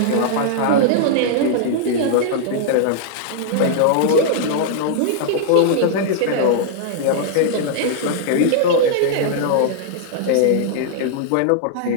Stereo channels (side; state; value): both; different; correlation -0.01